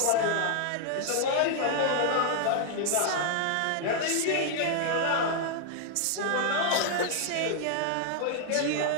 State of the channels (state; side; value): different; both; correlation -0.01